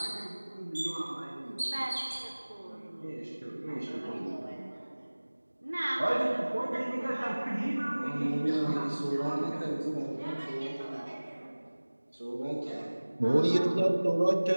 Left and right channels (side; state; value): both; inverted; correlation -1.00